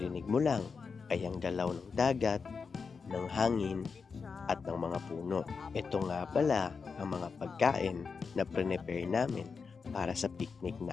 mo lang ay ang galaw ng dagat, ng hangin at ng mga puno. Ito nga pala ang mga pagkain na prepare namin para sa picnic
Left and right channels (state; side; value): quieter; right; 5.3 dB